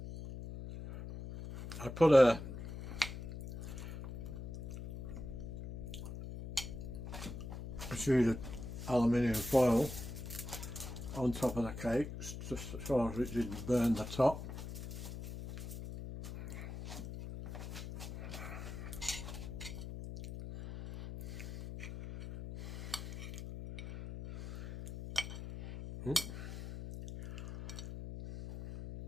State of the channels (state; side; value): noise; left; hum, 9 dB below the sound